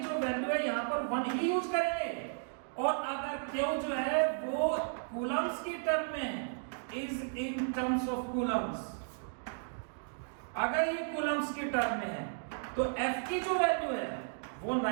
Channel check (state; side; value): silent; left; digital silence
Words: जो वैल्यू है यहां पर 1 ही यूज करेंगे. और अगर Q जो है वो कूलम्स की टर्म में है, is in terms of Coulomb's, अगर ये कूलम्स की टर्म में है तो F की जो वैल्यू है वो